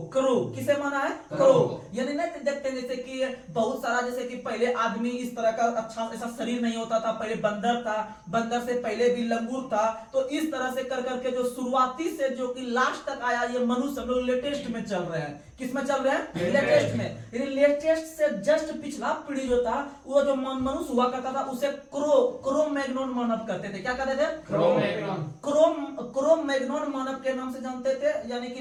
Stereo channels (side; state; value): both; identical; correlation 1.00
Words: क्रो किसे माना है? क्रो। यानी नहीं देखते जैसे कि बहुत सारा, जैसे कि पहले आदमी इस तरह का अच्छा ऐसा शरीर नहीं होता था, पहले बंदर था, बंदर से पहले भी लंगूर था। तो इस तरह से कर करके जो शुरुआती से जो कि लास्ट तक आया, ये मनुष्य हम लोग लेटेस्ट में चल रहे हैं। किस में चल रहे हैं? लेटेस्ट में। यानी लेटेस्ट से जस्ट पिछला पीढ़ी जो था, वो जो मनुष्य हुआ करता था, उसे क्रो मैग्नोन मानव कहते थे। क्या कहते थे? क्रो मैग्नोन मानव के नाम से जानते थे। यानी